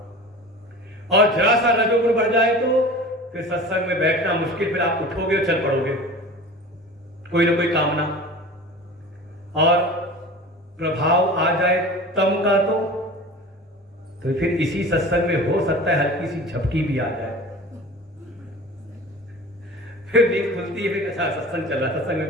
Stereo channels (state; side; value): normal; both; correlation 0.37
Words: और जरा सा रजोगुण बढ़ जाए तो फिर सत्संग में बैठना मुश्किल, फिर आप उठोगे और चल पड़ोगे, कोई ना कोई कामना। और प्रभाव आ जाए तम का तो फिर इसी सत्संग में हो सकता है हल्की सी झपकी भी आ जाए, फिर नींद खुलती है, फिर अच्छा सत्संग चल रहा, सत्संग में